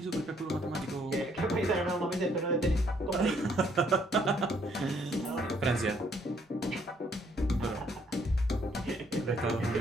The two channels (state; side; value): normal; both; correlation 0.67